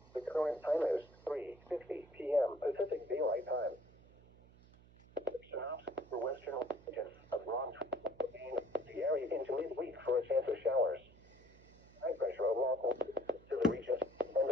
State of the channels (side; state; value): right; noise; hum, 24 dB below the sound